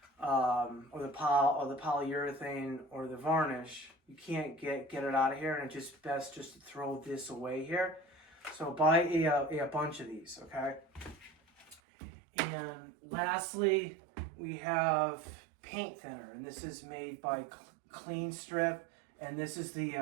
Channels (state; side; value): drops out; left; at 11.8 s